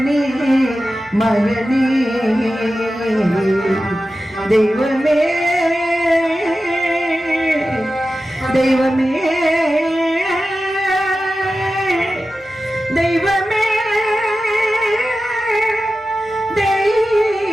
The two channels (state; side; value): normal; both; correlation 0.93